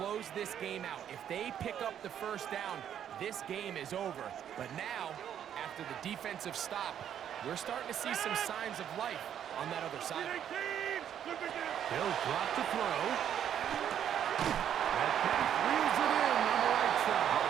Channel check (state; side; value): quieter; left; 9.6 dB